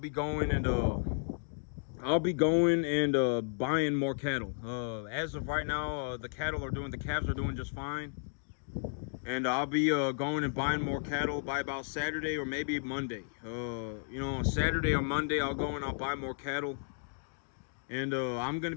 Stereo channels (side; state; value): right; silent; digital silence